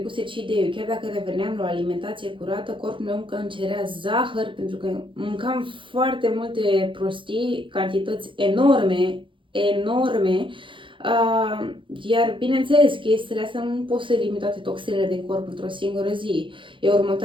cheat day-ul, chiar dacă reveneam la o alimentație curată, corpul meu încă îmi cerea zahăr, pentru că mâncam foarte multe prostii, cantități enorme, iar bineînțeles, chestiile astea nu pot să elimine toate toxinele din corp într-o singură zi. Eu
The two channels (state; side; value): late; left; 0.25 ms